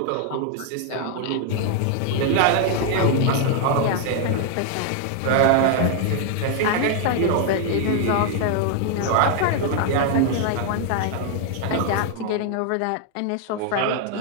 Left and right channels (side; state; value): both; different; correlation 0.00